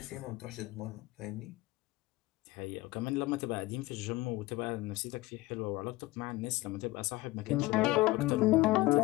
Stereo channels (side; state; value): right; quieter; 19.6 dB